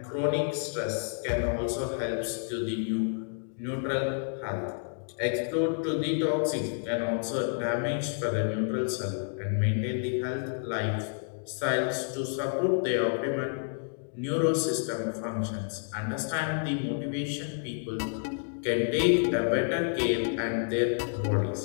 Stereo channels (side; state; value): right; silent; digital silence